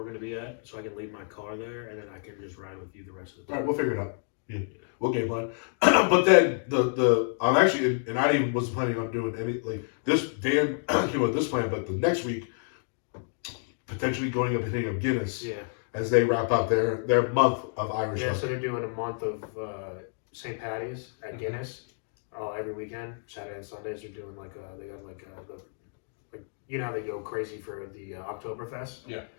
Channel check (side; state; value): right; silent; digital silence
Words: going to be at, so I can leave my car there, and then I can just ride with you the rest of the time. All right, we'll figure it out. Yeah, we'll game plan. But then I'm actually, and I even wasn't planning on doing any like this. Dan came with this plan, but the next week potentially going up and hitting up Guinness. Yeah. As they wrap up their month of Irish. Yeah, so they're doing a month of St. Patty's at Guinness every weekend, Saturday and Sundays. They're doing they got how they go crazy for the Oktoberfest. Yeah.